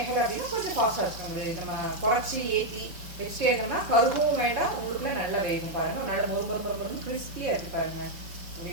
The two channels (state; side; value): late; left; 5.3 ms